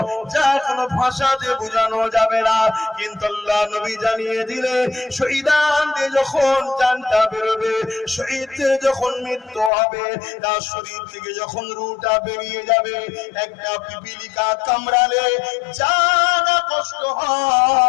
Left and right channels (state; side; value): drops out; right; at 9.7 s